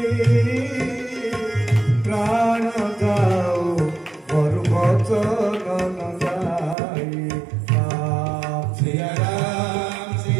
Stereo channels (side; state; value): left; drops out; at 6.8 s